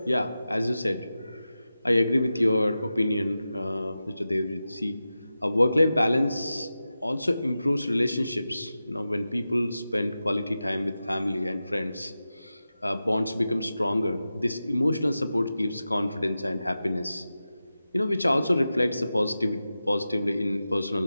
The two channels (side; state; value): both; inverted; correlation -0.93